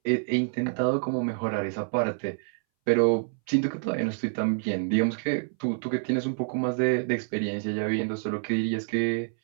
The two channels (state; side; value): silent; left; 60 dB below the other